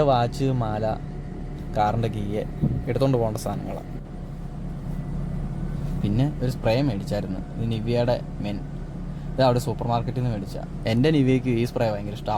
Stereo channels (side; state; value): both; identical; correlation 1.00